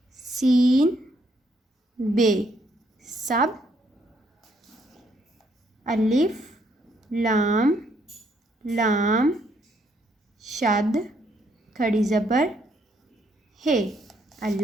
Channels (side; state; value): both; normal; correlation 0.71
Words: सीन बे सब, अलिफ लाम लाम शद खड़ी ज़बर है,